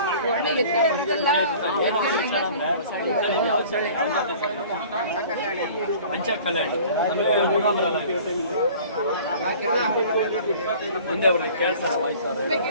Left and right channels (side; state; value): both; inverted; correlation -0.47